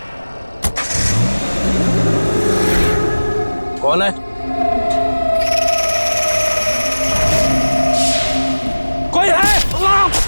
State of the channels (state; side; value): inverted; both; correlation -1.00